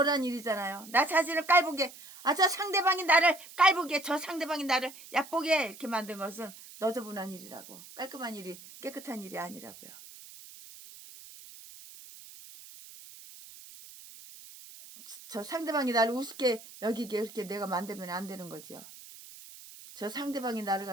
일이잖아요. 나 자신을 깔보게, 저 상대방이 나를 깔보게, 저 상대방이 나를 얕보게 이렇게 만든 것은 너저분한 일이라고. 깔끔한 일이, 깨끗한 일이 아니라고요. 저 상대방이 나를 우습게 여기게 이렇게 내가 만들면 안 되는 거죠. 저 상대방이 나를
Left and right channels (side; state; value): right; noise; hiss, 17 dB below the sound